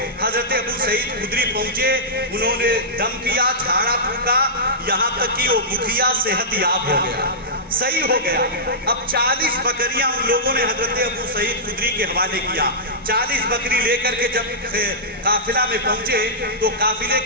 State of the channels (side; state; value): both; normal; correlation -0.14